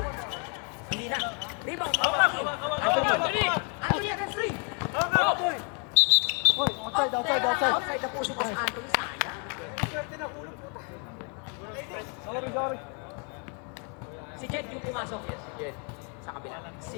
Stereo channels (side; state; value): right; quieter; 38.3 dB